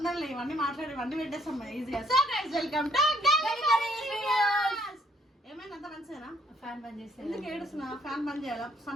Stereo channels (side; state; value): both; normal; correlation 0.65